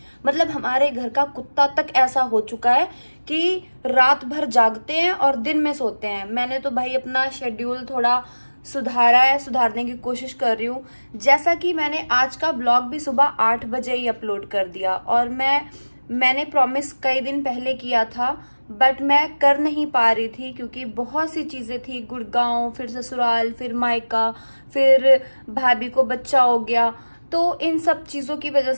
मतलब हमारे घर का कुत्ता तक ऐसा हो चुका है कि रात भर जागते हैं और दिन में सोते हैं। मैंने तो भाई अपना शेड्यूल थोड़ा सुधारा है, सुधारने की कोशिश कर रही हूँ। जैसा कि मैंने आज का व्लॉग भी सुबह 8 बजे ही अपलोड कर दिया, और मैंने प्रॉमिस कई दिन पहले किया था, बट मैं कर नहीं पा रही थी क्योंकि बहुत सी चीजें थी। गुड़गांव, फिर ससुराल, फिर मायका, फिर भाभी को बच्चा हो गया, तो इन सब चीजों की वजह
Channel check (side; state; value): both; inverted; correlation -1.00